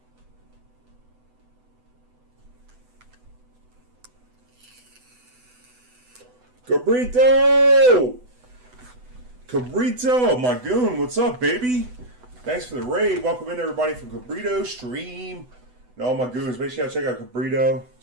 Cabrito! Cabrito, my goon, what's up, baby? Thanks for the raid. Welcome in, everybody, from Cabrito Stream. And all my goons, make sure y'all check out Cabrito.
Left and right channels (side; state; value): left; late; 8.0 ms